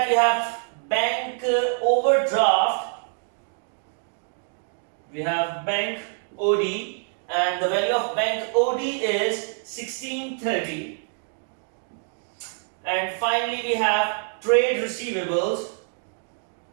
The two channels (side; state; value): left; silent; 61 dB below the other